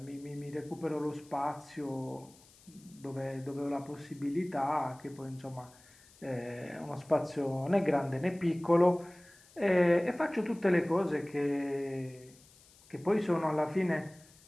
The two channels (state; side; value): noise; left; hiss, 26 dB below the sound